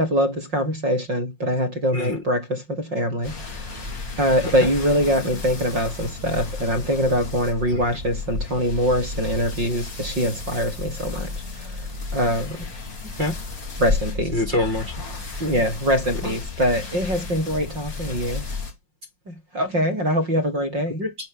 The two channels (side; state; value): left; late; 5.6 ms